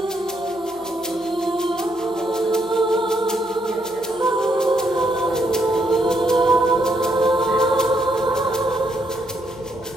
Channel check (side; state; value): right; noise; hum, 27 dB below the sound